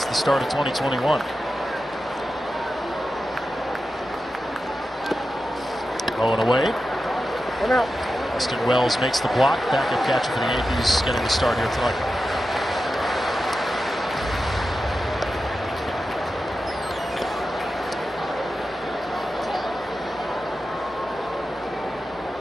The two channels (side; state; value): both; normal; correlation 0.91